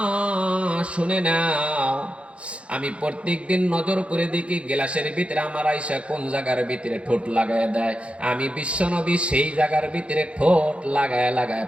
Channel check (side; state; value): left; late; 0.061 ms